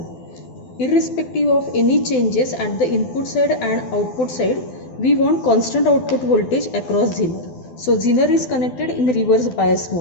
Irrespective of any changes at the input side and output side, we want constant output voltage across Zener. So Zener is connected in reverse bias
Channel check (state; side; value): late; right; 12 ms